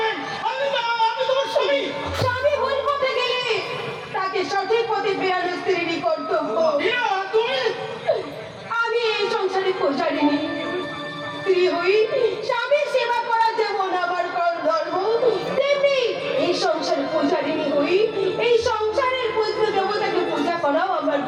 আমি তোমার স্বামী। স্বামী ভুল পথে গেলে তাকে সঠিক পথে ফেরানো স্ত্রীরই কর্তব্য। তুমি আমি এই সংসারে পৌঁছারিনি। স্ত্রী হই, স্বামীর সেবা করা যেমন আমার ধর্ম, তেমনি এই সংসারে পৌঁছারিনি হই এই সংসারের পুত্র দেবতাকে পূজা করাও আমার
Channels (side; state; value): both; identical; correlation 1.00